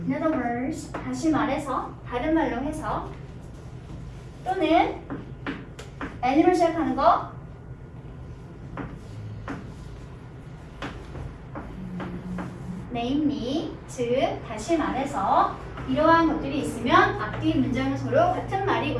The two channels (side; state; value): both; identical; correlation 1.00